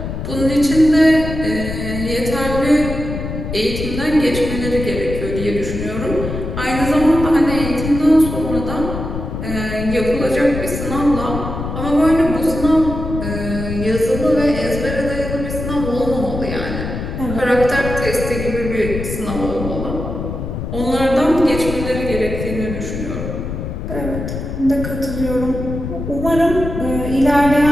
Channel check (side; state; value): left; noise; rumble, 6 dB below the sound